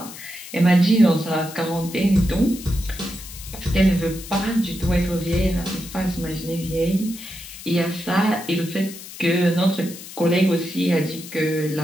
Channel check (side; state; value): left; noise; hiss, 14 dB below the sound